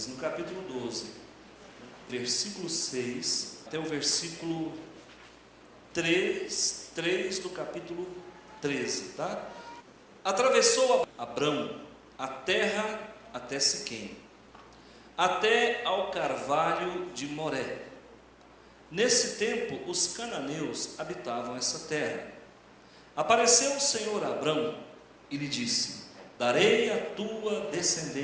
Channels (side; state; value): both; identical; correlation 1.00